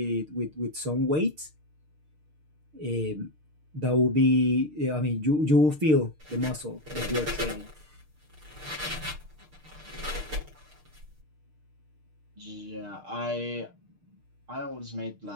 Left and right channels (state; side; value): late; left; 6.6 ms